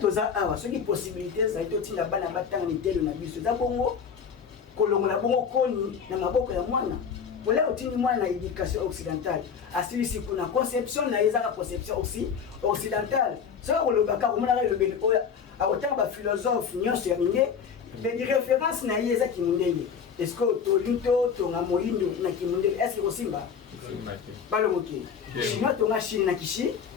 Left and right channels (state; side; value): quieter; right; 6.8 dB